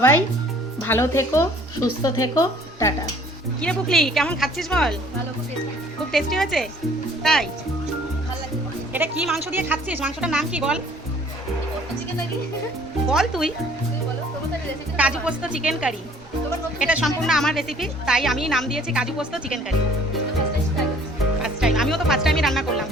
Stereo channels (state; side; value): normal; both; correlation 0.55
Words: ভালো থেকো, সুস্থ থেকো, টাটা। কিরে পুকলি, কেমন খাচ্ছিস বল? খুব টেস্টি হয়েছে তাই? এটা কি মাংস দিয়ে খাচ্ছিস? মাংসটার নাম কি বল? বল তুই। কাজু পোস্ত চিকেন কারি। এটা সম্পূর্ণ আমার রেসিপি, তাই আমি নাম দিয়েছি কাজু পোস্ত চিকেন কারি। ফার্স্ট টাইম, আমিও তো ফার্স্ট টাইমই রান্না করলাম।